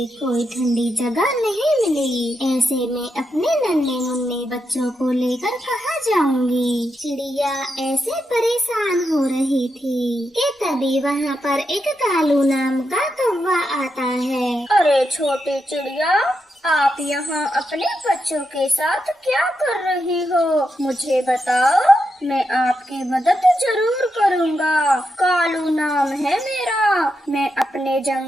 कोई ठंडी जगह नहीं मिली। ऐसे में अपने नन्हे मुन्ने बच्चों को लेकर कहाँ जाऊंगी? चिड़िया ऐसे परेशान हो रही थी कि तभी वहाँ पर एक कालू नाम का कौवा आता है। अरे छोटी चिड़िया, आप यहाँ अपने बच्चों के साथ क्या कर रही हो? मुझे बताओ, मैं आपकी मदद जरूर करूँगा। कालू नाम है मेरा। मैं अपने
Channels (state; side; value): normal; both; correlation 0.85